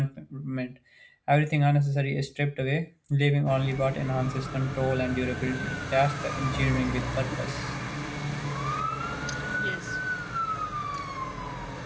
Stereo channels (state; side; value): identical; both; correlation 1.00